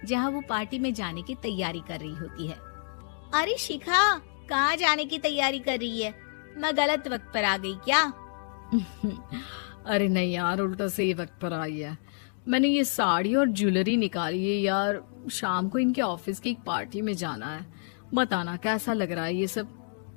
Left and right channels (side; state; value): right; silent; digital silence